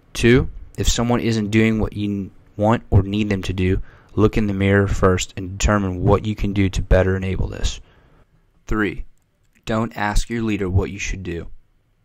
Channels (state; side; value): identical; both; correlation 1.00